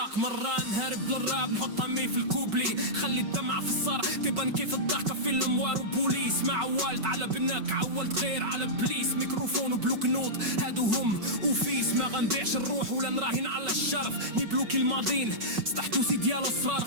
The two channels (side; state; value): left; late; 5.3 ms